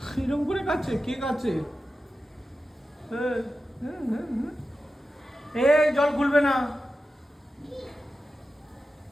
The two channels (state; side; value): normal; both; correlation 0.92